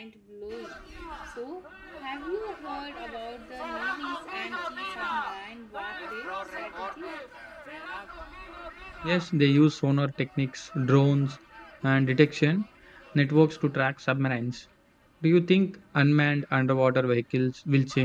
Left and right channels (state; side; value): identical; both; correlation 1.00